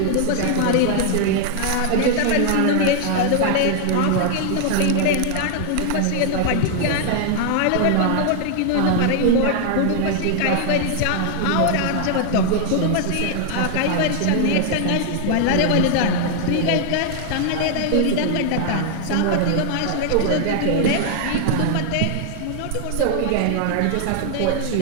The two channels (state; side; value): different; both; correlation 0.00